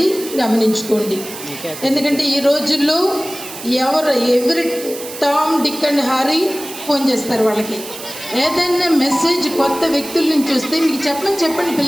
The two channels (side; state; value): right; noise; hiss, 12 dB below the sound